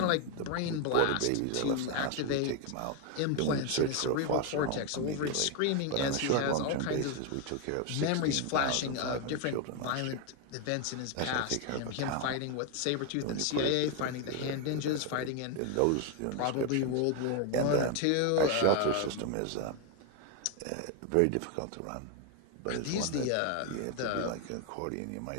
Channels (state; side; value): different; both; correlation 0.01